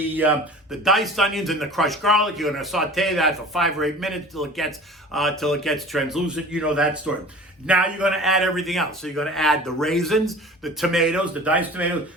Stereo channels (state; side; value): normal; both; correlation 0.41